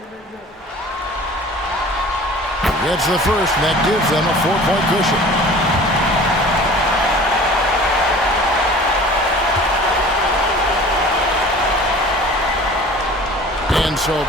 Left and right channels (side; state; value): both; normal; correlation 0.44